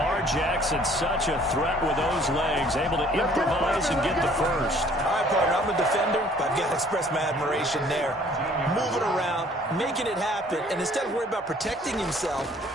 Jackson, such a threat with those legs. Able to improvise and get the 1st. All right, partner, I'm a defender, but I've got to express my admiration there. Moving around, making it happen, and instead of worrying about protecting himself,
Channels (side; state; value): both; normal; correlation 0.57